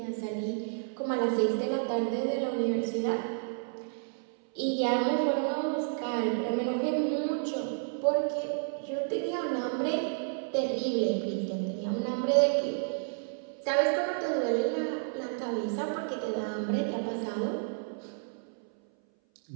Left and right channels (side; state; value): left; silent; 57 dB below the other